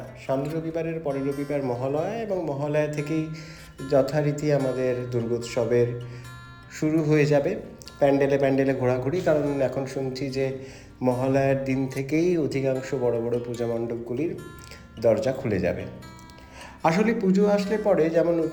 সামনের রবিবারের পরের রবিবার মহালয়া এবং মহালয়া থেকেই যথারীতি আমাদের দুর্গোৎসবের শুরু হয়ে যাবে। প্যান্ডেলে প্যান্ডেলে ঘোরাঘুরি, কারণ এখন শুনছি যে মহালয়ার দিন থেকেই অধিকাংশ বড় বড় পূজা মণ্ডপগুলির দরজা খুলে যাবে। আসলে পুজো আসলে পরে যেমন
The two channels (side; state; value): both; identical; correlation 1.00